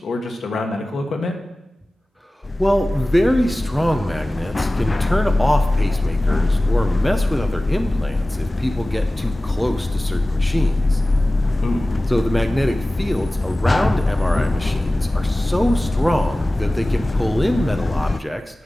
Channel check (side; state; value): both; normal; correlation 0.97